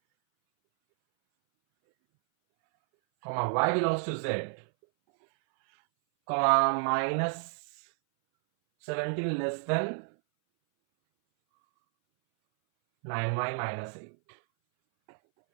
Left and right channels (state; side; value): silent; left; 58 dB below the other